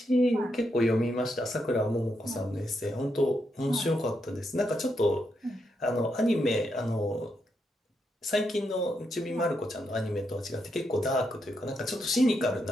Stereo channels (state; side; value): normal; both; correlation 0.81